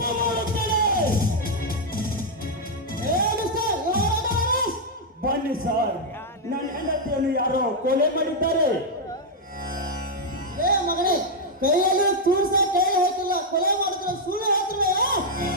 ಮಾಡುತ್ತೇನೆ. ಬನ್ನಿ ಸರ್, ನನ್ನ ಹೆಂಡತಿಯನ್ನು ಯಾರೋ ಕೊಲೆ ಮಾಡಿದ್ದಾರೆ. ಏ ಮಗನೇ, ಕೈಯಲ್ಲಿ ತೂರ್ಸ ಕೈ ಹಾಕಿಲ್ಲ, ಕೊಲೆ ಮಾಡಿದ್ರೆ ಸುಳ್ಳು ಹೇಳ್ತಾರೆ.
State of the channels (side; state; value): both; normal; correlation -0.01